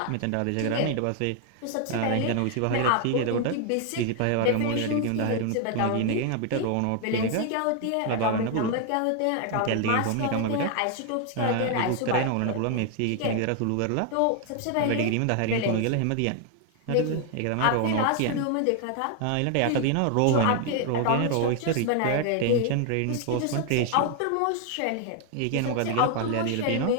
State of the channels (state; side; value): different; both; correlation 0.00